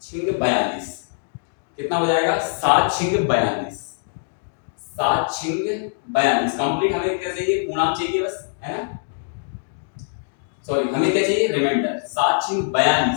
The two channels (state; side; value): silent; right; digital silence